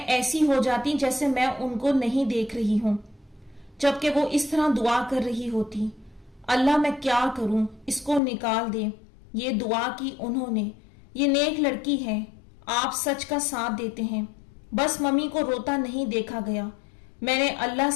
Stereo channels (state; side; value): drops out; right; at 8.2 s